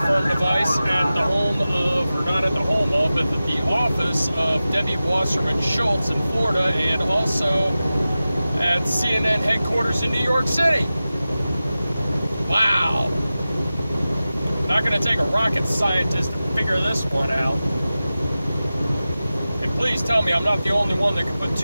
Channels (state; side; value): inverted; both; correlation -0.95